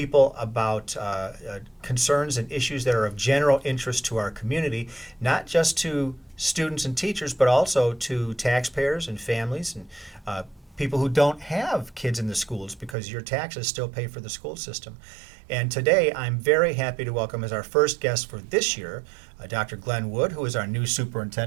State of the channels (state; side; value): drops out; left; at 13.0 s